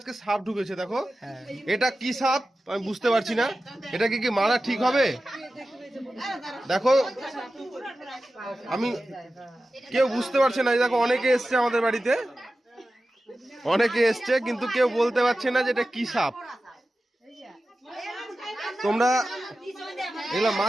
সাপ ঢুকেছে, দেখো। এটা কি সাপ আমি বুঝতে পারছি না। এটা কি মারা ঠিক হবে? দেখো, আমি কেউ বুঝতে পারছে না। দেখো অনেকে এসছে আমাদের বাড়িতে, অনেকে এসছে, কিন্তু কেউ বলতে পারছে না যে এটা কি সাপ। তোমরা এগুলো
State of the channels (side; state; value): both; normal; correlation 0.94